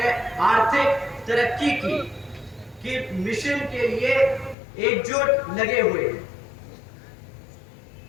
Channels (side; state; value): right; drops out; at 4.5 s